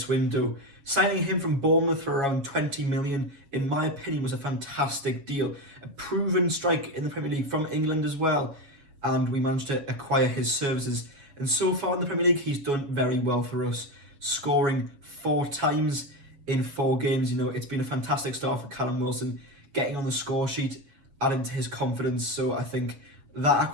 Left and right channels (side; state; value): left; late; 7.3 ms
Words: window. Signing him from Bournemouth for around 20 million, in my opinion, was a fantastic deal. A proven strike in the Premier League from England as well, and we managed to acquire his services. And so far in the Premier League, he's done very well for us, scoring 4 times in 4 games. You know, it's been a fantastic start for Callum Wilson, getting on the score sheet, adding to his confidence. So I think that